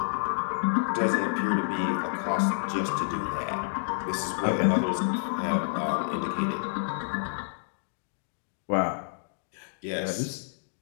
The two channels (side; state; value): right; silent; digital silence